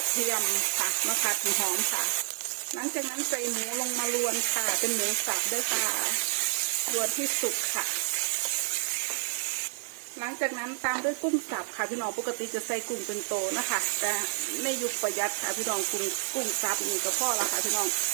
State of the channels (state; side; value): silent; left; 58 dB below the other